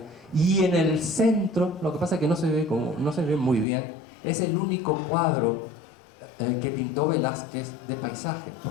Y en el centro, lo que pasa es que no se ve muy bien, es el único cuadro que pintó Velázquez de paisaje,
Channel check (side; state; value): right; drops out; at 3.7 s